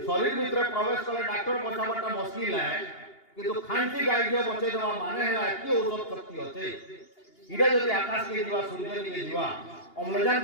शरीर भीतर प्रवेश कले डॉक्टर बचावटा मुश्किल है किंतु खांसी गाय घियो बचे देवा माने है कि औषध शक्ति होते इरा जदि आकाश के जीवा सूर्य के जीवा अम्लजान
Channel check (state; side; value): late; right; 2.8 ms